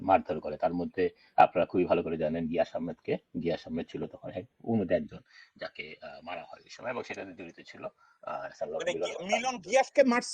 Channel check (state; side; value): identical; both; correlation 1.00